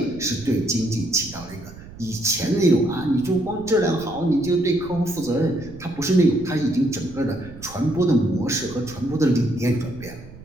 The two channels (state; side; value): noise; right; rumble, 17 dB below the sound